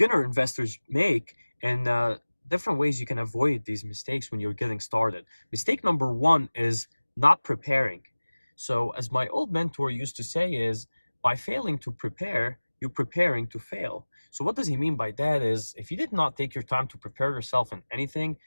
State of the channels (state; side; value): inverted; both; correlation -1.00